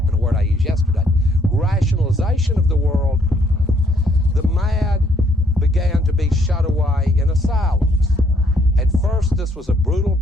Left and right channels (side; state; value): both; normal; correlation 0.68